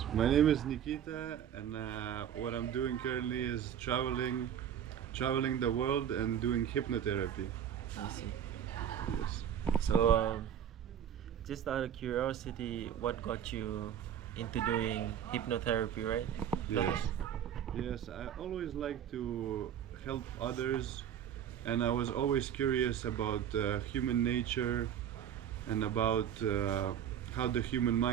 My name is Nikita, and what I'm doing currently is traveling the world and doing hypnotherapy. I see. Yes. So, just out of curiosity, what got you into doing hypnotherapy, right? Go Yes. ahead. Yes. I always like to help others, and I was always curious about human nature and about how the human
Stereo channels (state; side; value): quieter; left; 9.5 dB